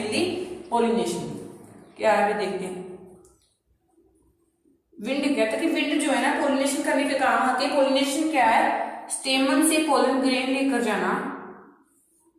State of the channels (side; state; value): both; identical; correlation 1.00